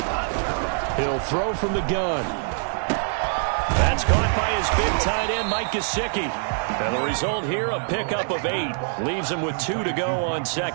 He'll throw from the gun. That's caught by his big tight end, Mike Gesicki. And the result here, a pickup of 8. Leaves him with 2 to go on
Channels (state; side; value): silent; left; 59 dB below the other